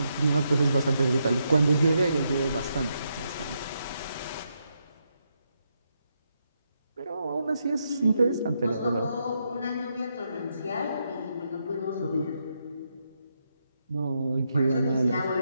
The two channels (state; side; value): inverted; both; correlation -0.81